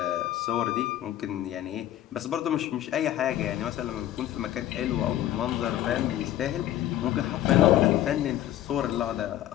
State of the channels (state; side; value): quieter; right; 12.8 dB